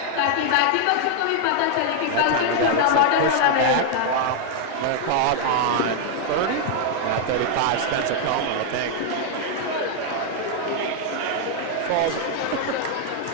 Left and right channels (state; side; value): different; both; correlation 0.00